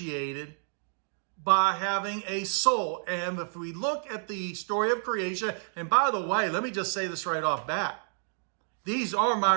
by having a soul. And if we look at the story of creation, and by the way, let me just say this right off bat. These are my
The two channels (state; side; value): silent; left; digital silence